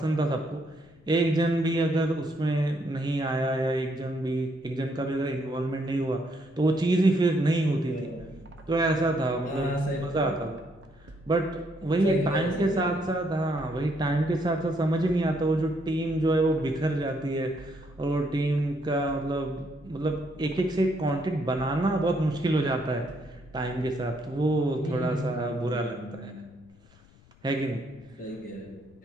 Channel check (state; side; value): noise; left; rumble, 27 dB below the sound